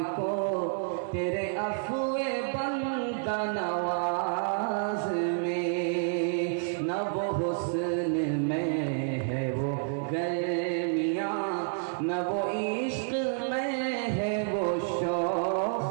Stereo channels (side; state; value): left; silent; 58 dB below the other